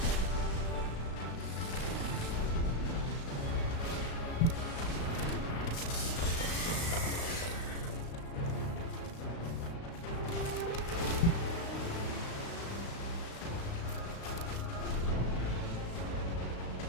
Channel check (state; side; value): late; right; 35 ms